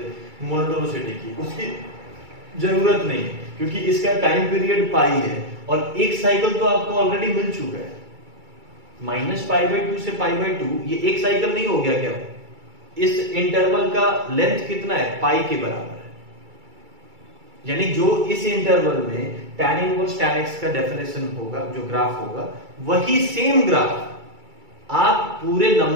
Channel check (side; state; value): left; late; 2.3 ms